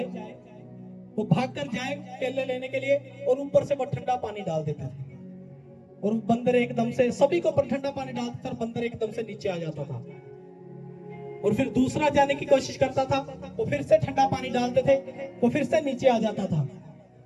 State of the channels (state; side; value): identical; both; correlation 1.00